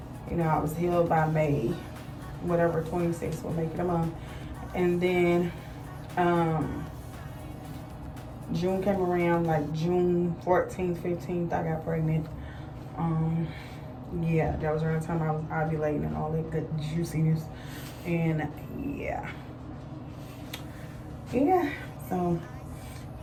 you know, I was healed by May, whatever, 26th will make it a month. And then June came around, like June 14th, 15th, I got pregnant. Yeah, that was around the time I was ovulating and all that good juiciness. And yeah. So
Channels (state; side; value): identical; both; correlation 1.00